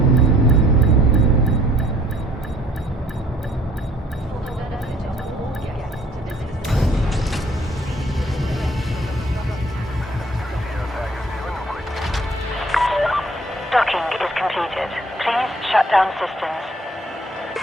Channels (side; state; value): both; normal; correlation 0.58